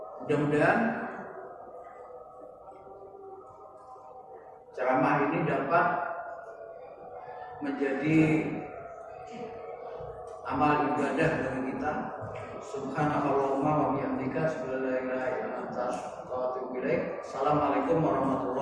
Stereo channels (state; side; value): identical; both; correlation 1.00